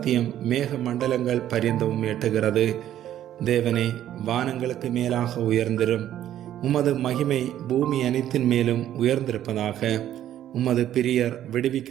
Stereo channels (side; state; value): left; quieter; 11.7 dB